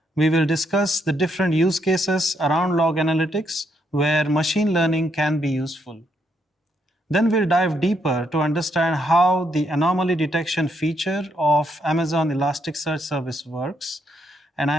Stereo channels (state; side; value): normal; both; correlation 0.75